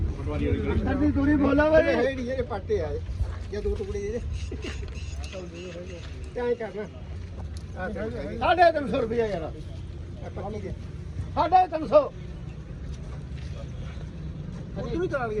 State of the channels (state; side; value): identical; both; correlation 1.00